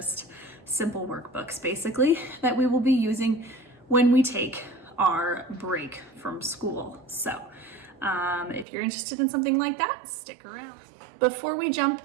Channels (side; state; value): left; drops out; at 8.7 s